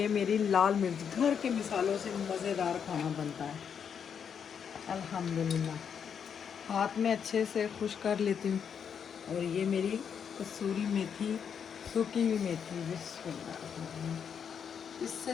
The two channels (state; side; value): quieter; right; 7.4 dB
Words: मेरी लाल मिर्च। घर के मिसालों से मज़ेदार खाना बनता है अल्हम्दुलिल्लाह। हाथ में अच्छे से खुश कर लेती हूँ। और ये मेरी कसूरी मेथी, सूखी हुई मेथी। बिस्मिल्लाह। इससे